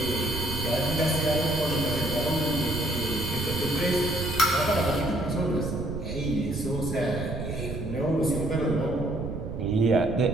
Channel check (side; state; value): right; noise; rumble, 6 dB below the sound